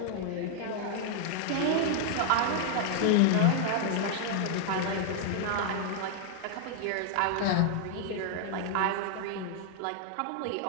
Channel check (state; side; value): different; both; correlation -0.01